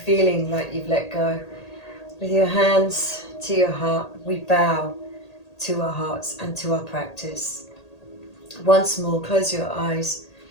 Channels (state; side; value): late; right; 1.8 ms